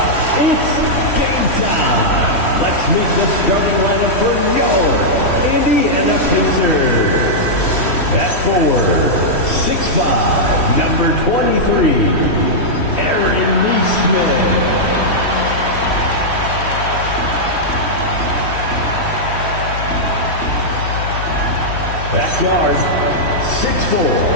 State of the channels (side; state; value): right; late; 3.1 ms